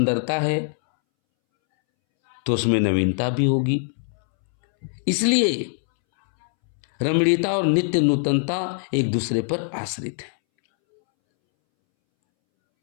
है तो उसमें नवीनता भी होगी। इसलिए रमणीयता और नित्य नूतनता एक दूसरे पर आश्रित है।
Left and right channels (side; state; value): right; silent; 64 dB below the other